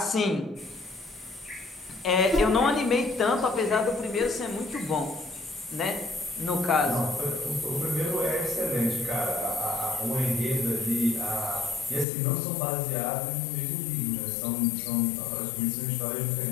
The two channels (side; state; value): right; drops out; at 12.1 s